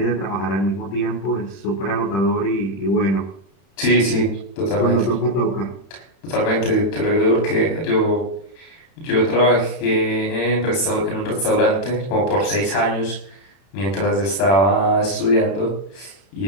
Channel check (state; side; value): late; right; 31 ms